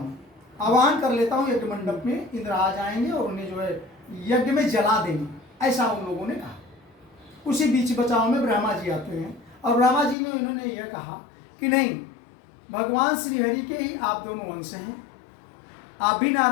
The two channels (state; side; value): drops out; right; at 10.2 s